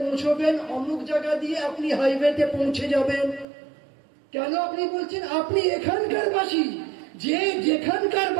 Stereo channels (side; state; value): left; drops out; at 3.5 s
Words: পৌঁছবেন, অমুক জায়গা দিয়ে আপনি হাইওয়েতে পৌঁছে যাবেন। কেন আপনি বলছেন? আপনি এখানকার বাসী, যে যেখানকার